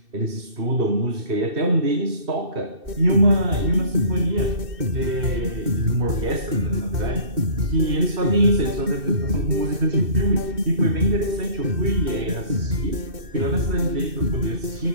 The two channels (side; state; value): left; late; 2.6 ms